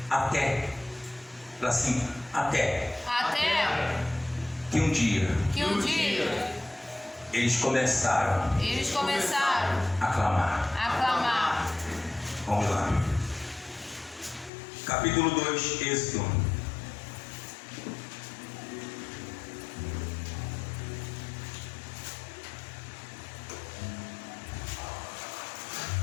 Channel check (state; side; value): drops out; right; at 14.5 s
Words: Até. Assim, até. Que um dia. Eles começaram. A clamar. Vamos lá. Capítulo 2, Êxodo.